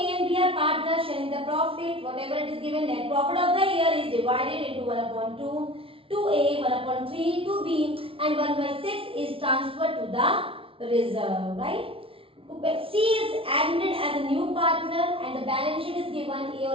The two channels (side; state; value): left; late; 0.26 ms